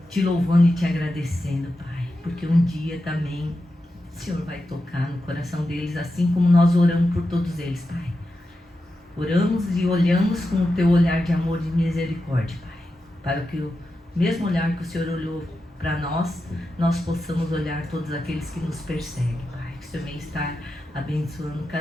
te louvando e te agradecendo, Pai, porque um dia também o Senhor vai tocar no coração deles, assim como nós oramos por todos eles, Pai. Oramos e olhamos com o teu olhar de amor e de misericórdia, Pai, para que o mesmo olhar que o Senhor olhou para nós, nós possamos olhar todos aqueles que nos perseguem, Pai. Que o Senhor venha estar abençoando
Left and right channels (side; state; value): both; normal; correlation 0.90